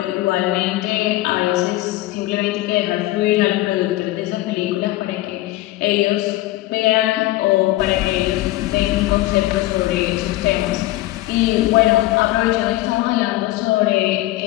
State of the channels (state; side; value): quieter; right; 17.2 dB